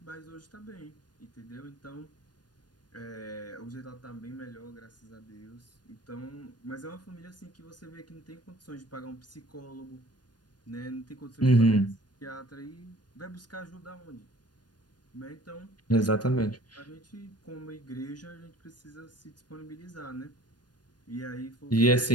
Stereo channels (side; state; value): right; late; 0.69 ms